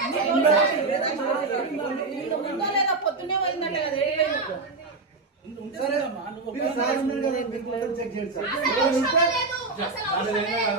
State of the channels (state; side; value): quieter; left; 3.7 dB